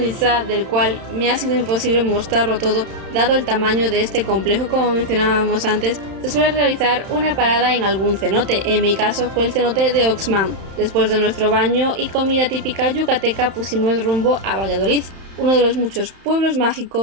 Itzá, del cual me ha sido imposible mostrarlo todo, dado el tamaño de este complejo como mencionábamos antes, se suele realizar una parada en algún cenote. En mi caso fue el cenote de Oxman. Después de nuestro baño y comida típica yucateca pusimos rumbo a Valladolid, uno de los muchos pueblos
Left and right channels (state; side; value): late; left; 31 ms